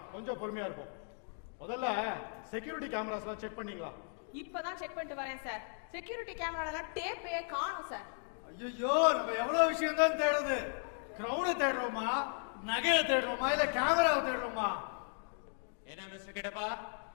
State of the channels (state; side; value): silent; right; 54 dB below the other